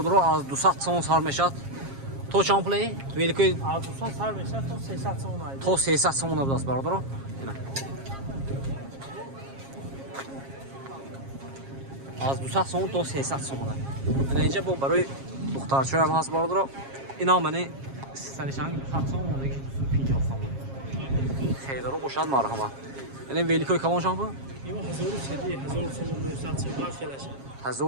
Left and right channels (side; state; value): left; late; 7.4 ms